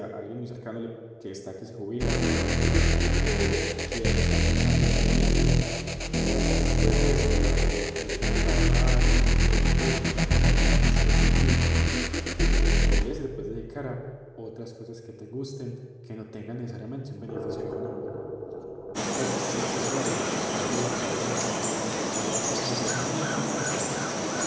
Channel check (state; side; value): identical; both; correlation 1.00